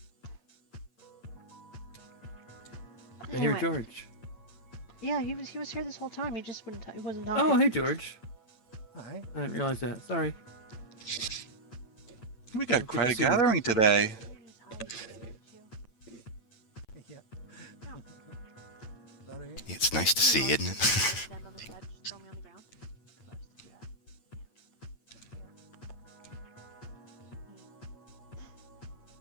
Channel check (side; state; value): right; late; 9.0 ms